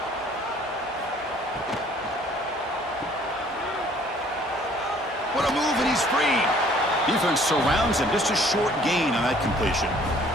What a move, and he's free. Defense surrounds him. Just a short gain on that completion.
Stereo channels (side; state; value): both; normal; correlation 0.57